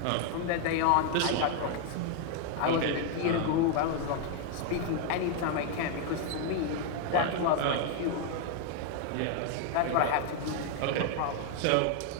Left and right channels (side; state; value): both; different; correlation 0.00